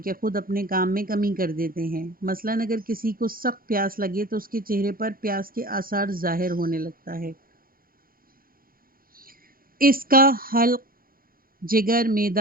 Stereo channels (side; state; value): left; late; 0.42 ms